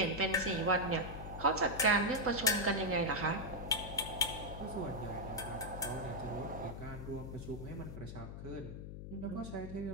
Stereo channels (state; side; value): noise; left; hum, 9 dB below the sound